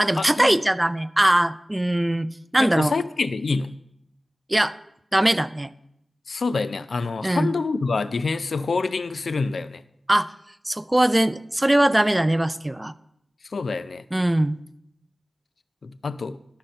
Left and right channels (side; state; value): both; normal; correlation 0.97